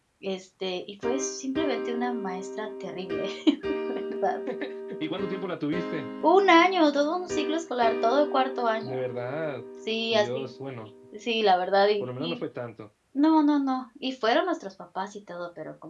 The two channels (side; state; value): both; identical; correlation 1.00